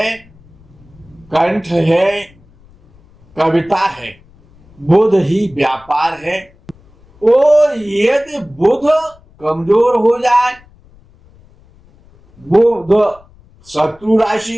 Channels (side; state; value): left; noise; rumble, 28 dB below the sound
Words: कंठ है, कविता है। बुध ही व्यापार है। और यदि बुध कमजोर हो जाए, बुध शत्रु